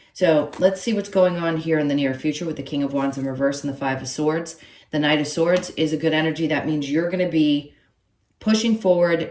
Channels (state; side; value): identical; both; correlation 1.00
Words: So let's see what's going on here in the near future with the King of Wands in reverse and the Five of Swords. The Knight of Swords is a good energy. That means you're going to be pushing